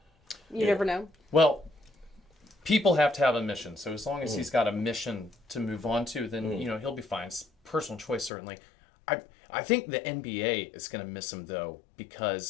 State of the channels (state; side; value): drops out; right; at 8.3 s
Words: you never know. Well, people have to have a mission. So as long as he's got a mission to move on to, then he'll be fine. It's personal choice, certainly. I think the NBA is going to miss him though